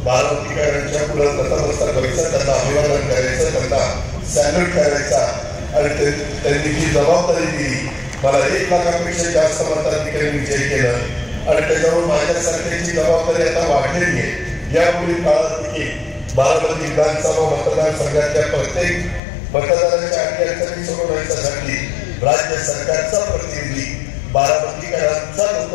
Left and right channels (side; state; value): right; drops out; at 19.2 s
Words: बारामतीकरांच्या पुढे नतमस्तक व्हायचं, त्यांना अभिवादन करायचं, त्यांना सॅल्यूट करायचा आणि त्यांनी जी जबाबदारी दिली, मला 1 लाखापेक्षा जास्त मताधिकारी विजय केलं आणि त्याच्यावर माझ्यासारख्याची जबाबदारी आता वाढलेली आहे. यापुढील काळात देखील बारामती विधानसभा मतदारसंघातल्या प्रत्येक मतदाराच्या अडचणी सोडवण्यासाठी राज्य सरकारचा प्रतिनिधी, बारामतीकरांचा